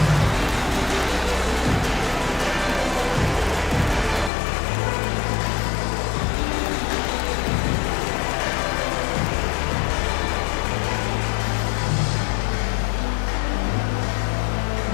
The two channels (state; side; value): drops out; right; at 4.3 s